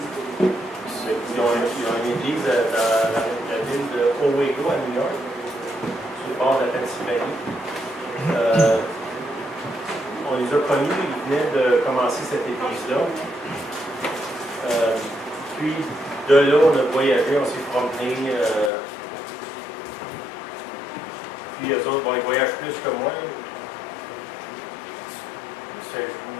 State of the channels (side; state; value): right; drops out; at 18.7 s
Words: Ils ont une église dans la ville de Owego à New York, sur le bord de la Pennsylvanie. On les a connus, ils venaient de commencer cette église-là. Puis de là, on a voyagé, on s'est promené. Puis eux autres, ils voyagent plus que moi. Je